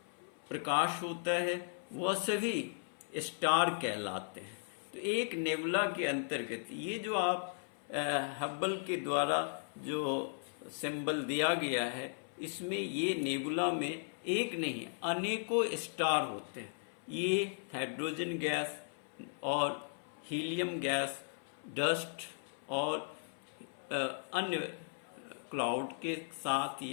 प्रकाश होता है, वह सभी स्टार कहलाते हैं। तो एक नेबुला के अंतर्गत ये जो आप हब्बल के द्वारा जो सिंबल दिया गया है, इसमें ये नेबुला में एक नहीं अनेकों स्टार होते हैं। ये हाइड्रोजन गैस और हीलियम गैस, डस्ट और अन्य क्लाउड के साथ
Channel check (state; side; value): silent; right; 53 dB below the other